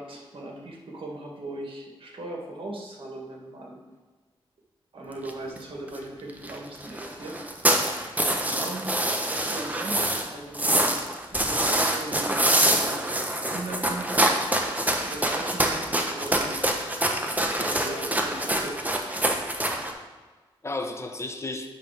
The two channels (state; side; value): normal; both; correlation 0.31